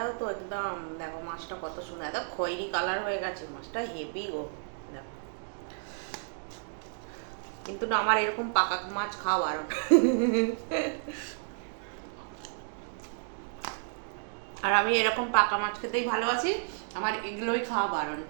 তো একদম দেখো, মাছটা কত সুন্দর, একদম খয়েরি কালার হয়ে গেছে মাছটা, হেভি গো দেখো। কিন্তু না আমার এরকম পাকা মাছ খাওয়া বারণ। আর আমি এরকম পাকা মাছ খেতেই ভালোবাসি, আমার এগুলোই খাওয়া বারণ।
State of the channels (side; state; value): left; silent; digital silence